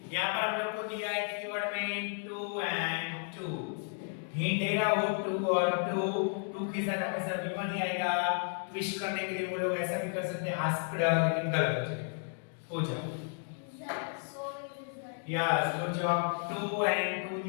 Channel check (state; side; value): silent; right; 56 dB below the other